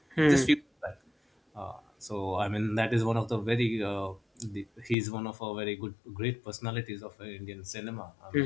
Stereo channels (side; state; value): right; drops out; at 5.0 s